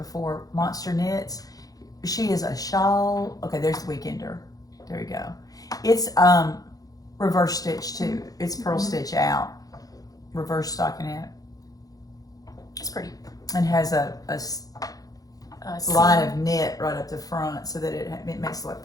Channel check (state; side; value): late; right; 0.18 ms